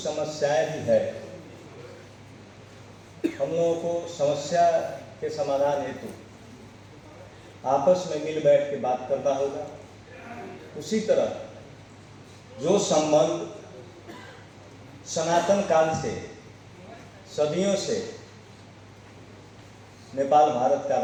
भी है। हम लोगों को समस्या के समाधान हेतु आपस में मिल बैठ के बात करना होगा। उसी तरह जो संबंध सनातन काल से, सदियों से नेपाल भारत का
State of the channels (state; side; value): identical; both; correlation 1.00